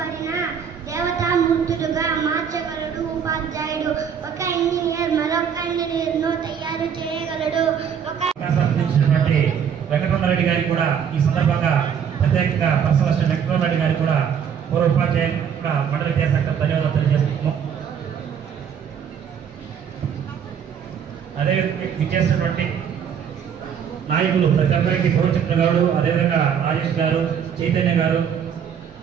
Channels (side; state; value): left; quieter; 7.8 dB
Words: దేవతామూర్తులుగా మార్చగలడు ఉపాధ్యాయుడు. ఒక ఇంజనీర్ మరొక ఇంజనీర్ను తయారు చేయగలడు. వెంకటరమణారెడ్డి గారికి కూడా ఈ సందర్భంగా ప్రత్యేకంగా పర్సనల్ అసిస్టెంట్ వెంకటరమణారెడ్డి గారికి కూడా పూర్వ ఉపాధ్యాయులు మండల విద్యాశాఖ ధన్యవాదాలు తెలియజేస్తున్నాం. అదేవిధంగా విచ్చేసినటువంటి నాయకులు ప్రతి ఒక్కరికి గౌరవచంద్ర గారు, అదేవిధంగా రాజేష్ గారు, చైతన్య గారు,